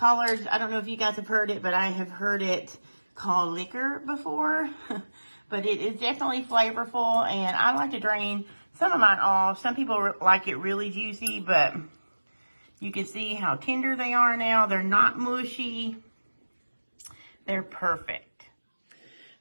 I don't know if you guys have heard it, but I have heard it called liquor before. But it is definitely flavorful, and I like to drain some of mine off. Some people like it really juicy, but you can see how tender they are now. They're not mushy. They're perfect.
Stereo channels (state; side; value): inverted; both; correlation -1.00